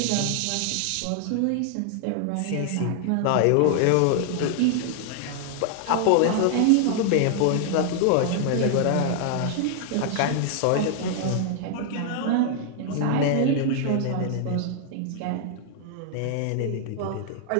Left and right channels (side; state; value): both; different; correlation 0.00